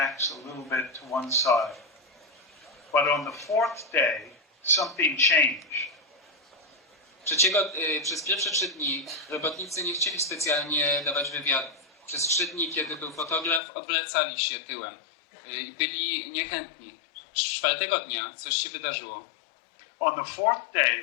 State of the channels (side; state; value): right; drops out; at 13.6 s